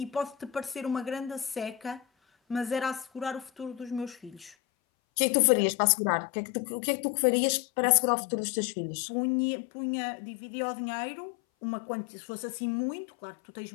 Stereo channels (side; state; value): right; drops out; at 4.5 s